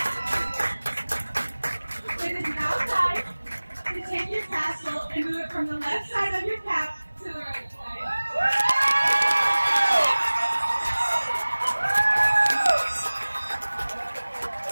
It is now time to take your tassel and move it from the left side of your cap to the right side.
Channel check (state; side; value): inverted; both; correlation -1.00